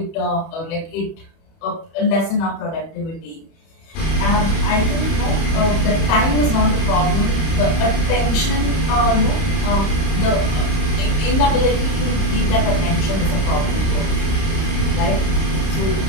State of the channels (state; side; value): late; right; 31 ms